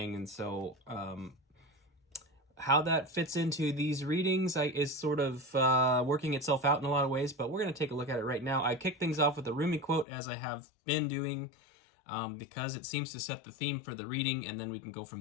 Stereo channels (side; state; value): right; drops out; at 10.1 s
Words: and so how that fits into these readings is sort of working itself out in a lot of ways, but we're going to take a look at it right now. I kick things off with a Rumi quote, as I have been doing, because it seems to set the theme for the reading, and then we can go